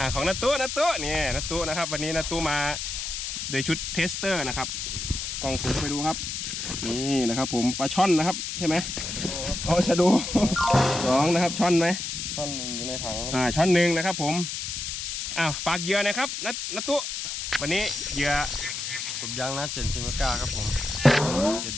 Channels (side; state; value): left; noise; hiss, 4 dB below the sound